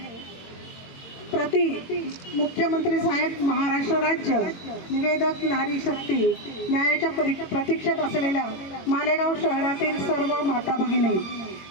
प्रति मुख्यमंत्री साहेब महाराष्ट्र राज्य, निवेदक नारी शक्ती, न्यायाच्या प्रतीक्षेत असलेल्या मालेगाव शहरातील सर्व माता भगिनी।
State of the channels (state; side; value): late; right; 22 ms